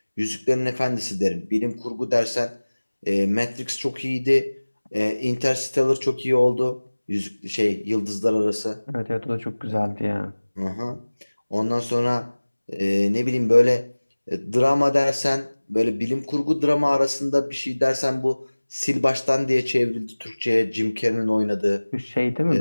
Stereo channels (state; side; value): inverted; both; correlation -1.00